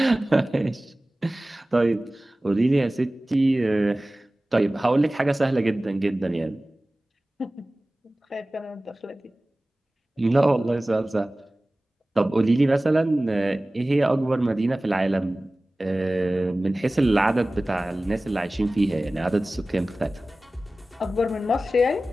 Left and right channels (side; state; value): both; normal; correlation 0.97